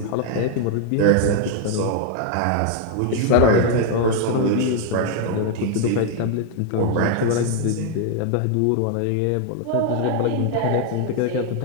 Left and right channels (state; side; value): different; both; correlation 0.00